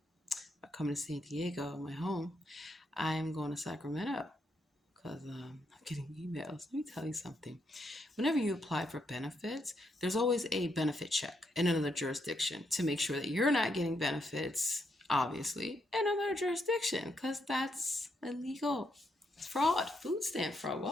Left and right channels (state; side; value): normal; both; correlation 0.78